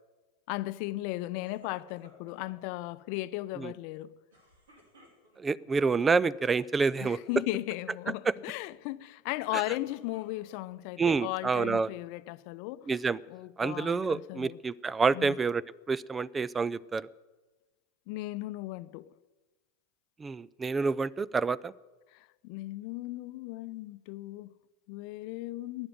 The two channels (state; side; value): normal; both; correlation 0.67